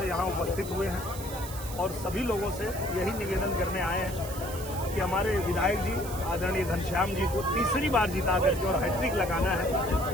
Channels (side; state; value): right; noise; hiss, 12 dB below the sound